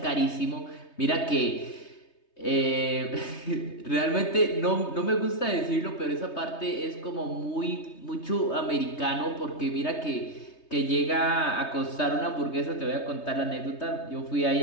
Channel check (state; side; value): late; right; 3.2 ms